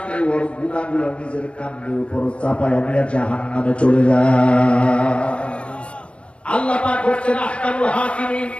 ওর গুনাহগুলো নিজের কাঁধের উপর চাপায় নিয়ে জাহান্নামে চলে যায়। আল্লাহ পাক হচ্ছেন আহকামুল হাকিমিন,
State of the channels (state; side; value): late; right; 0.059 ms